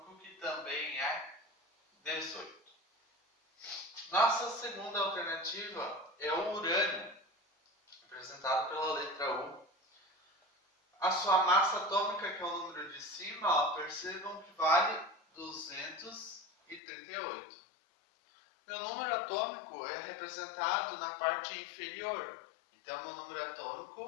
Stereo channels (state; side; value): drops out; right; at 16.8 s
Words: que também é 18. Nossa segunda alternativa é o urânio, representado pela letra U. A sua massa atômica, que é o número de cima, percebam que vale 238. Meu número atômico é representado na parte inferior. Então, meu número